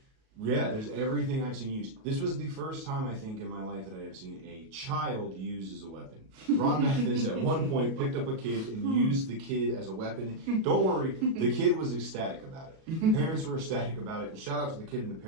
Yeah, there's everything I've seen used. This was the first time, I think, in my life that I have seen a child used as a weapon. Ron Mathis, at one point, picked up a kid and used the kid as a weapon. Don't worry, the kid was ecstatic about it. Parents were ecstatic about it. And shout out to the kid and the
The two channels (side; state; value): left; late; 37 ms